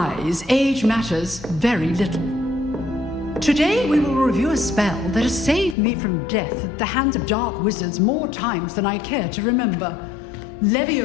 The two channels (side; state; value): right; drops out; at 5.8 s